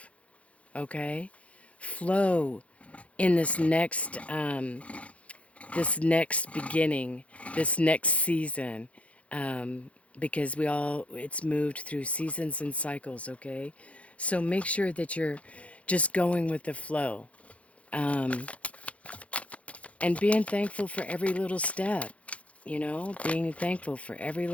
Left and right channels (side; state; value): right; late; 0.064 ms